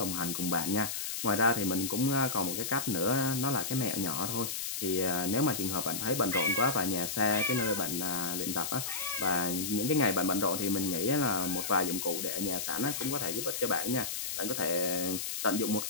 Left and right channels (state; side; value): noise; left; hiss, 3 dB below the sound